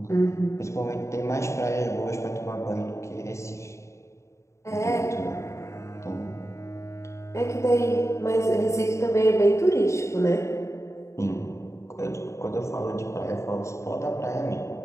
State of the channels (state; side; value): late; right; 0.14 ms